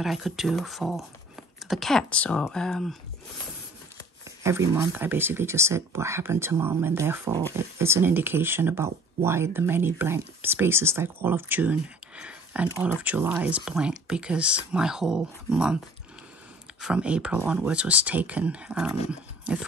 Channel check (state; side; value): normal; both; correlation 0.50